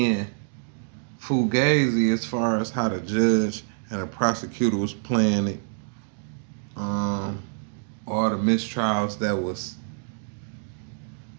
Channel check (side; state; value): left; silent; digital silence